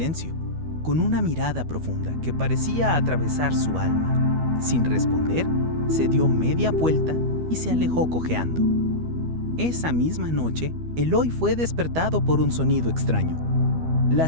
con una mirada profunda que parecía atravesar su alma. Sin responder, se dio media vuelta y se alejó cojeando. Esa misma noche, Eloi fue despertado por un sonido extraño.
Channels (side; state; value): left; late; 12 ms